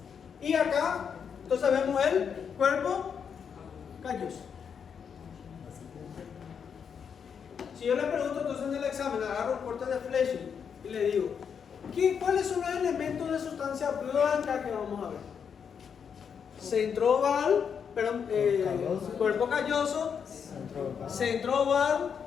Y acá, entonces vemos el cuerpo calloso. Si yo le pregunto entonces en el examen, agarro el corte de flecha y le digo, ¿cuáles son los elementos de sustancia blanca que vamos a ver? Centro oval, perdón, cuerpo calloso, centro oval,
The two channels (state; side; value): quieter; right; 7.0 dB